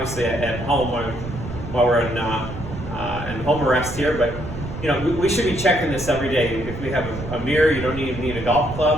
at home while we're in home arrest here, but we should be checking this every day. If we have a mirror, you don't even need a golf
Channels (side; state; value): right; noise; rumble, 9 dB below the sound